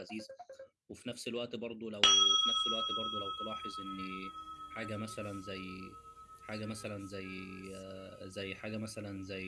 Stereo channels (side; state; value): both; identical; correlation 1.00